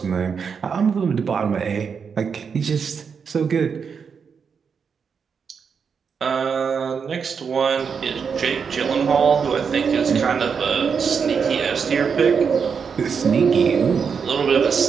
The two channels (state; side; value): quieter; left; 6.2 dB